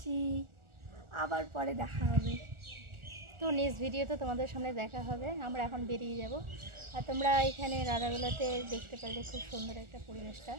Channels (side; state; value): left; late; 1.4 ms